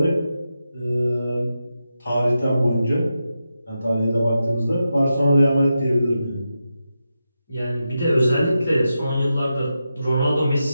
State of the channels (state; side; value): inverted; both; correlation -0.89